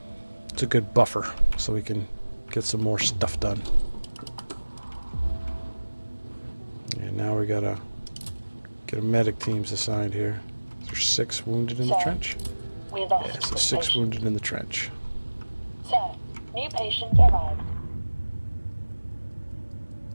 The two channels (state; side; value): inverted; both; correlation -1.00